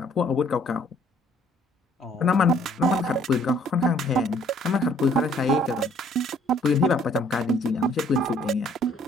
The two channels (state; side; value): normal; both; correlation 0.61